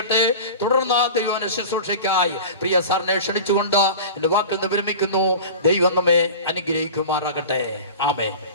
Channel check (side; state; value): both; inverted; correlation -0.34